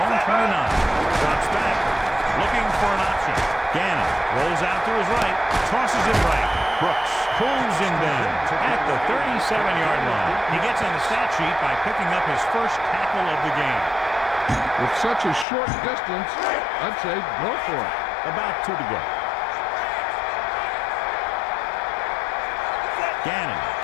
own 29. Drops back. Looking for an option. Gannon rolls out to his right. Tosses it right. Brooks pulls him down at the 37-yard line. He gets on the stat sheet by picking up his first tackle of the game. With such a short distance, I'd say go for it. About 2 to go. Gannon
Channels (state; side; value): drops out; right; at 15.5 s